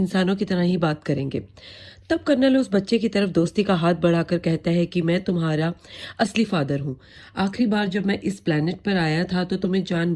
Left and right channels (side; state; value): both; identical; correlation 1.00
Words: की तरह ही बात करेंगे। तब कर्नल उस बच्चे की तरफ दोस्ती का हाथ बढ़ाकर कहता है कि मैं तुम्हारा असली फादर हूँ। आखिरी बार जब मैं इस प्लेनेट पर आया था तो तुम्हें